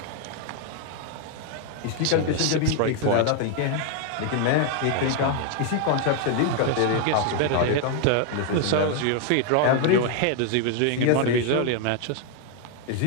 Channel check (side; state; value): both; different; correlation 0.01